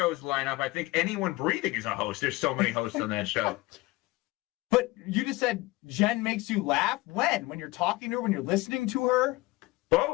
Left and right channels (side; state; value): right; quieter; 20.3 dB